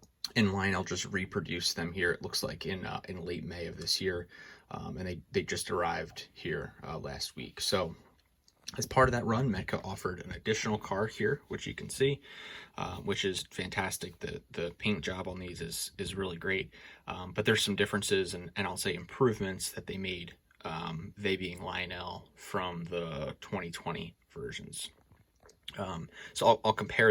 and Lionel just reproduced them here. It looks like in late May of this year, and they just arrived here last week. So as part of that run, Metco offered an additional car here, which you can see, which is fantastic. The paint job on these is really great, but there's some differences and I'll say improvements that they made, they being Lionel, from the 2020 versions. So I'll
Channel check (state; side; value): identical; both; correlation 1.00